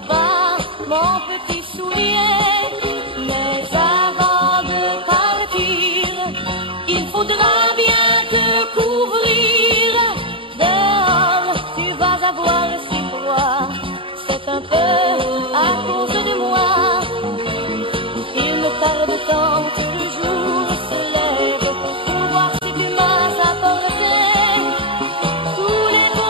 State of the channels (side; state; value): left; late; 0.25 ms